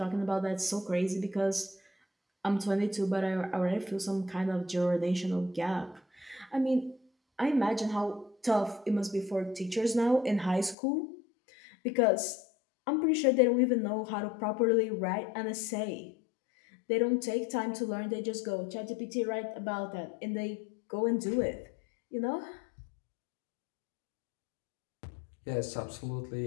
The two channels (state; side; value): drops out; right; at 10.8 s